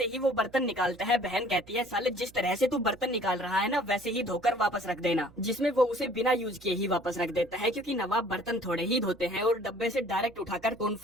ही वो बर्तन निकालता है बहन कहती है साले जिस तरह से तू बर्तन निकाल रहा है ना वैसे ही धोकर वापस रख देना। जिसमें वो उसे बिना यूज किए ही वापस रख देता है, क्योंकि नवाब बर्तन थोड़े ही धोते हैं और डब्बे से डायरेक्ट उठाकर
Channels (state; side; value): noise; right; hum, 24 dB below the sound